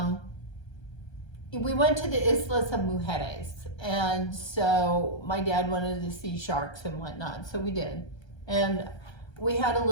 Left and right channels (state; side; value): late; right; 1.3 ms